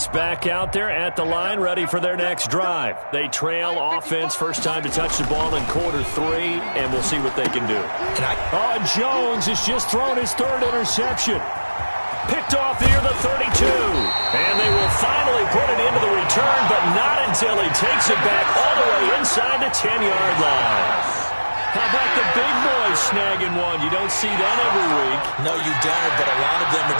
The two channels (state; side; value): inverted; both; correlation -1.00